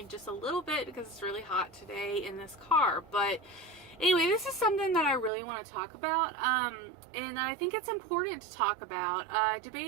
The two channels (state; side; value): drops out; left; at 5.3 s